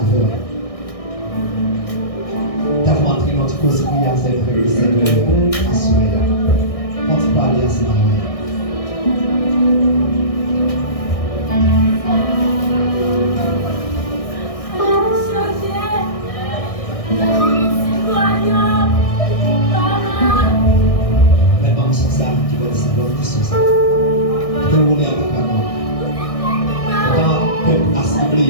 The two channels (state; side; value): late; right; 1.6 ms